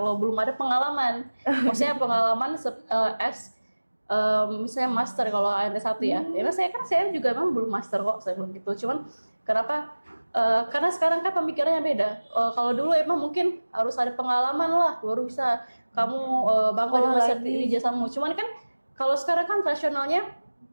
belum ada pengalaman. Maksudnya pengalaman misalnya master kalau ada satu ya. Karena saya juga memang belum master kok, saya belum gitu. Cuman kenapa? Karena sekarang kan pemikirannya beda. Kalau dulu emang mungkin harus ada pengalaman lah baru bisa kamu bangga dengan ijazahmu. Cuman kan kalau sekarang kan rasionalnya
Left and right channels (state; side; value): inverted; both; correlation -1.00